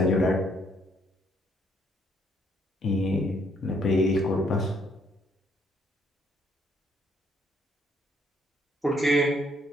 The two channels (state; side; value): normal; both; correlation 0.68